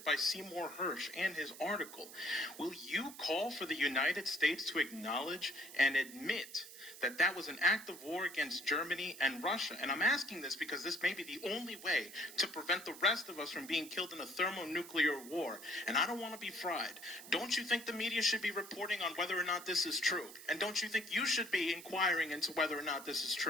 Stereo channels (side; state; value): right; noise; hiss, 15 dB below the sound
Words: by Seymour Hersh and his article, will you call for the United States to acknowledge and admit that that was an act of war against Germany and Russia? And I'm asking this because this may be the only way to prevent the rest of us from being killed in a thermonuclear war. And I don't want to be fried. Don't you think the media should be reporting on whether or not this is true? And don't you think you should be inquiring into whether or not this is